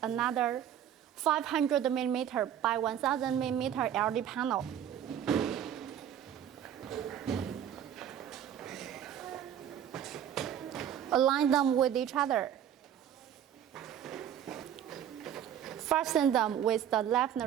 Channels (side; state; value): left; quieter; 9.9 dB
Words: another 500mm by 1000mm LED panel. Align them with each other. Fasten them with the left